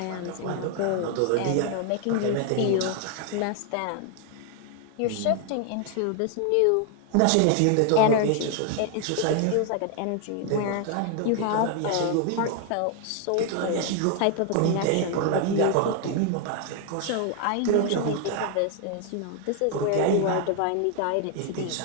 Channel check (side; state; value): both; different; correlation 0.00